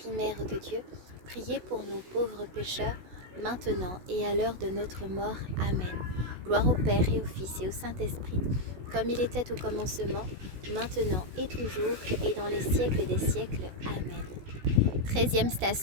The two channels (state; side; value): late; left; 16 ms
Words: Mère de Dieu, priez pour nous pauvres pécheurs, maintenant et à l'heure de notre mort. Amen. Gloire au Père et au Fils et au Saint-Esprit, comme il était au commencement, maintenant et toujours, et dans les siècles des siècles. Amen. 13e